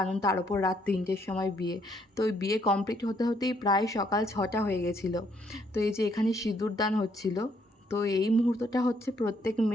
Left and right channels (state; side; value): normal; both; correlation 0.70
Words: তার ওপর রাত 3টের সময় বিয়ে। তো ওই বিয়ে কমপ্লিট হতে হতেই প্রায় সকাল 6টা হয়ে গেছিলো। তো এই যে এখানে সিঁদুরদান হচ্ছিল, তো এই মুহূর্তটা হচ্ছে প্রত্যেক